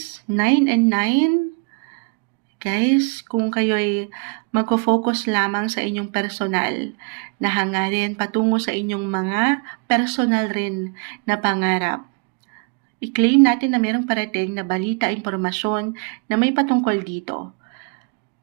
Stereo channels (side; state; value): left; quieter; 36.7 dB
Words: 9 and 9. Guys, kung kayo'y magfo-focus lamang sa inyong personal na hangarin patungo sa inyong mga personal rin na pangarap, i-claim natin na mayroong parating na balita, impormasyon na may patungkol dito.